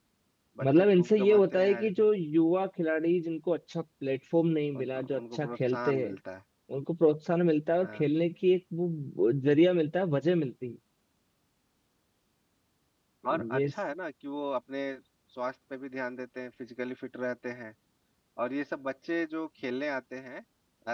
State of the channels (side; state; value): both; identical; correlation 1.00